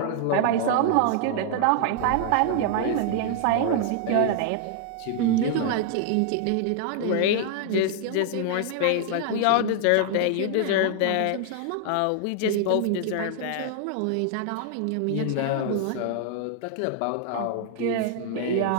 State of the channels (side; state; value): both; different; correlation 0.00